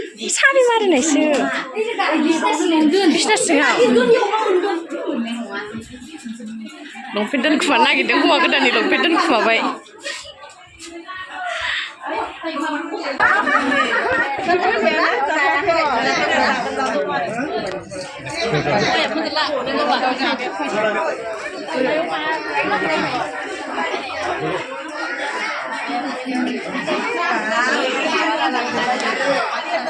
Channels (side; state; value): both; identical; correlation 1.00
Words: sari mari nih sih bisnis sih longpen dan kumana gitu kumagan dan longpen dan kumabai